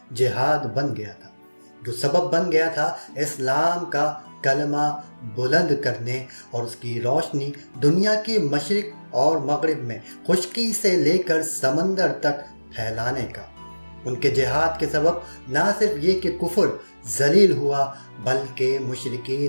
جہاد بن گیا تھا، جو سبب بن گیا تھا اسلام کا کلمہ بلند کرنے اور اس کی روشنی دنیا کے مشرق اور مغرب میں خشکی سے لے کر سمندر تک پھیلانے کا۔ ان کے جہاد کے سبب نہ صرف یہ کہ کفر ذلیل ہوا، بلکہ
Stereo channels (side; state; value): both; inverted; correlation -1.00